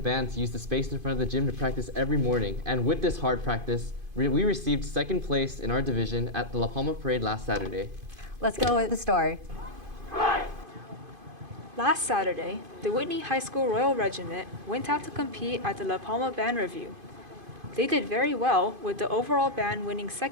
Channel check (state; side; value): late; left; 2.5 ms